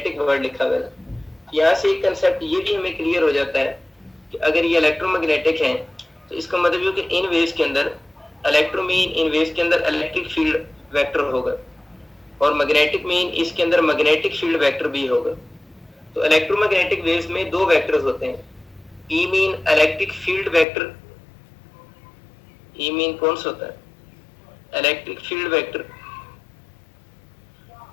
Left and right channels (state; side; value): drops out; right; at 20.7 s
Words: वर्ड लिखा हुआ है। यहाँ से एक कंसेप्ट ये भी हमें क्लियर हो जाता है कि अगर ये इलेक्ट्रोमैग्नेटिक है तो इसका मतलब ये कि इन वेव्स के अंदर इलेक्ट्रो मीन इन वेव्स के अंदर इलेक्ट्रिक फील्ड वेक्टर होगा और मैग्नेटिक मीन इसके अंदर मैग्नेटिक फील्ड वेक्टर भी होगा। तो इलेक्ट्रोमैग्नेटिक वेव्स में दो वेक्टर्स होते हैं, E mean electric field vector, E mean कौन सा होता है इलेक्ट्रिक फील्ड वेक्टर,